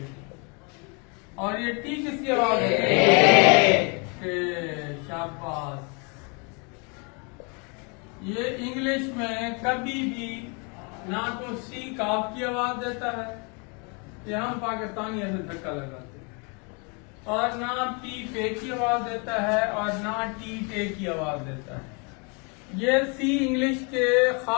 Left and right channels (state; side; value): quieter; right; 33.6 dB